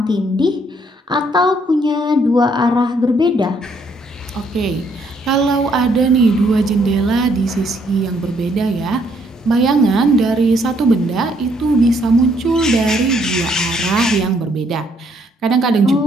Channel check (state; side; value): normal; both; correlation 0.69